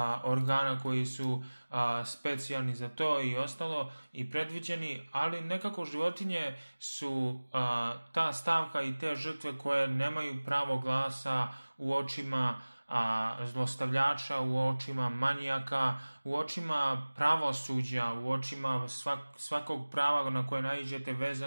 organa koji su specijalni za to i ostalo i predviđeni, ali nekako životinje su ta stavka i te žrtve koje nemaju pravo glasa u očima zlostavljača, u očima manijaka, u očima pravosuđa, u očima svakog prava na koje naiđete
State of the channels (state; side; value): inverted; both; correlation -1.00